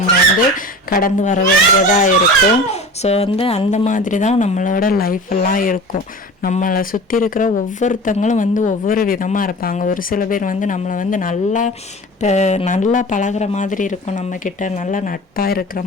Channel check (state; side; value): normal; both; correlation 0.36